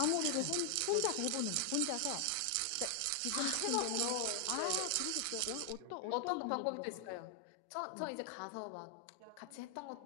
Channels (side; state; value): both; different; correlation 0.00